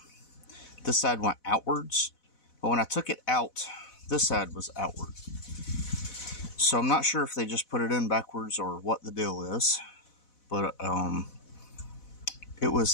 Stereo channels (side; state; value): right; late; 4.1 ms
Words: this side went outwards. But when I took it out, this side was outward. So I'm not sure if they just put it in backwards or what the deal is. But it